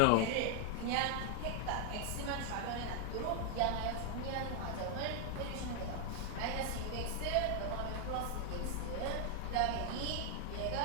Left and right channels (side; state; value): both; different; correlation 0.00